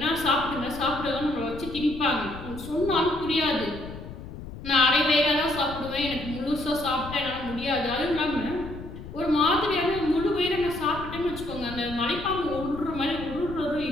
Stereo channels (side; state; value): left; noise; rumble, 12 dB below the sound